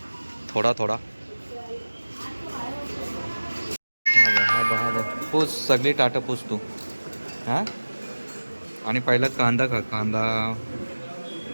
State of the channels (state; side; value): inverted; both; correlation -1.00